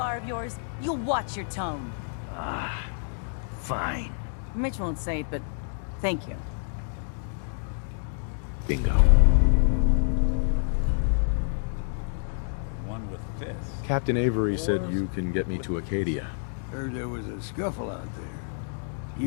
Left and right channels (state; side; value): silent; right; digital silence